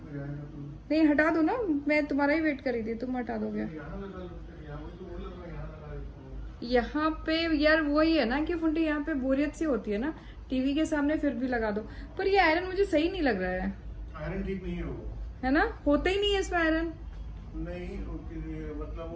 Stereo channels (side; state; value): both; identical; correlation 1.00